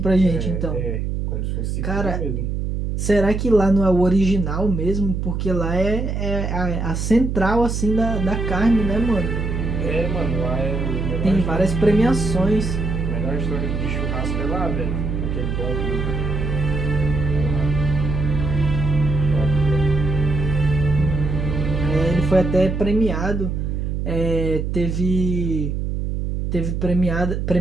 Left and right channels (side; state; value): right; noise; hum, 2 dB below the sound